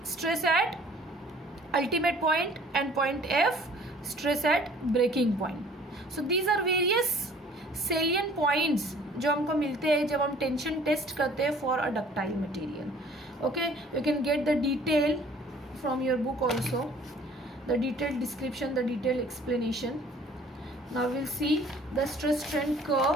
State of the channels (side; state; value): both; normal; correlation 0.53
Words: stress at ultimate point and point F stress at breaking point. So these are various salient points जो हमको मिलते हैं जब हम tension test करते हैं for a ductile material. Okay, you can get the detail from your book also, the detailed description, the detailed explanation. Now we'll see the stress strain